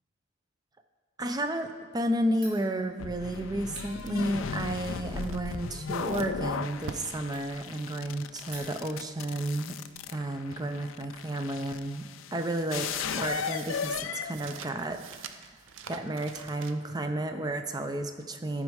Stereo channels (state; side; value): normal; both; correlation 0.57